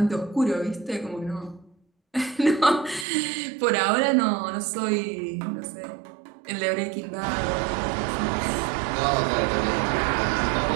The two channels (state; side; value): drops out; left; at 3.1 s